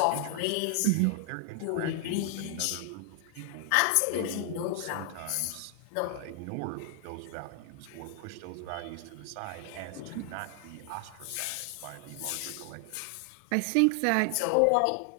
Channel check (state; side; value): different; both; correlation 0.00